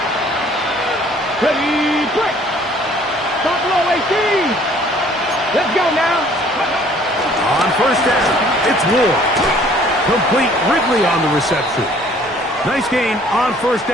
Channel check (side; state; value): both; normal; correlation 0.57